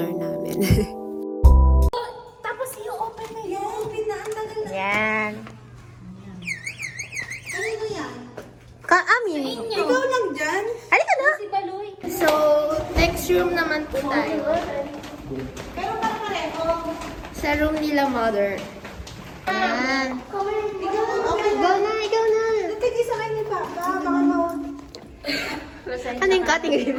namin. Tapos i-open na yan. Pinaantagal na. Yan. Kanino yan? Amin. Ikaw lang dyan? Halika na. Si Baloy. So, next room naman po tayo. Pero pareho. Sa room nila, mother. Yan. Ikaw lang. Okay. Ikaw na, ikaw na. Tigil sa kanya pa. Baka mawag. Ano yung cutting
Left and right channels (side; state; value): both; identical; correlation 1.00